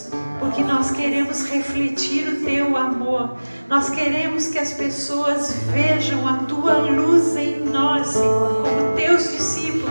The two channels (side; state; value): both; inverted; correlation -1.00